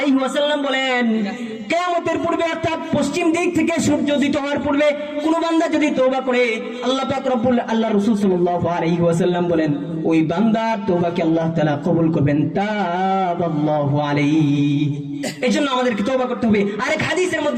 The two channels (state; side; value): identical; both; correlation 1.00